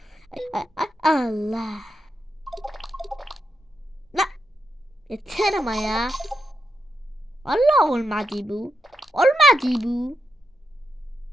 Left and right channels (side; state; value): both; normal; correlation 0.84